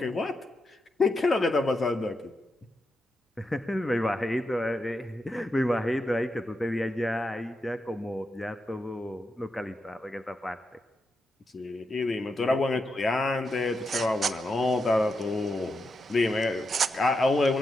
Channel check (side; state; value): both; normal; correlation 0.85